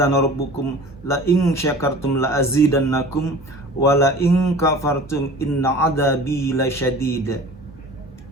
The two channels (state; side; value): normal; both; correlation 0.42